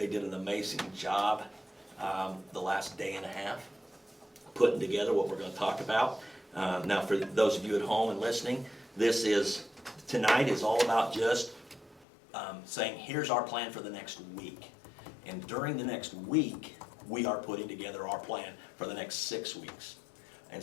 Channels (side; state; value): right; drops out; at 12.1 s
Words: did an amazing job the last day and a half putting together what we're going to talk about. Now, for those of you at home and listening, tonight is all about just saying, here's our plan for the next week. And during the next week, we are putting together our plan for the next 6 weeks. And